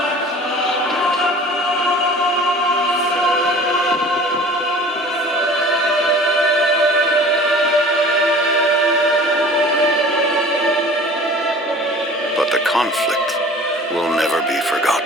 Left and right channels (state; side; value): normal; both; correlation 0.44